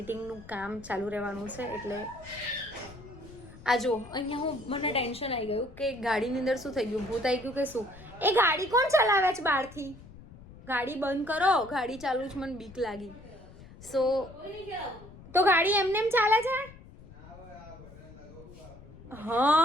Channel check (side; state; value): left; noise; rumble, 19 dB below the sound